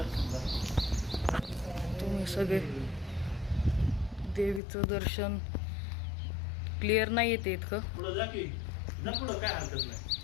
तुम्ही सगळे. देवीचं दर्शन क्लिअर नाही येते इतकं. पुढं जा की, जा पुढं, काय हरकत नाही.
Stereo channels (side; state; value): right; drops out; at 4.6 s